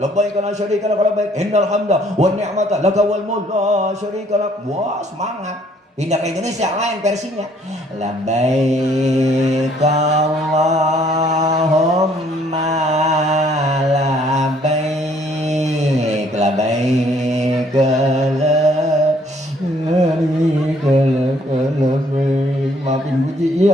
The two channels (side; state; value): both; normal; correlation 0.63